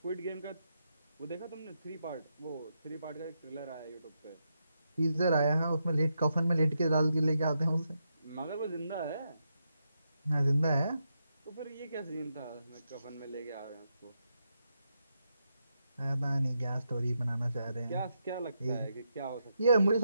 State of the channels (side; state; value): both; inverted; correlation -0.83